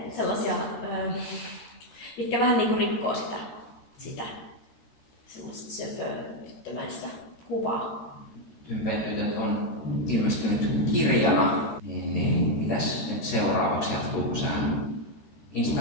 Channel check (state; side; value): late; right; 13 ms